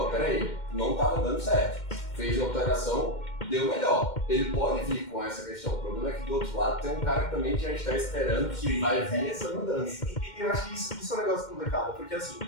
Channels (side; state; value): right; late; 2.1 ms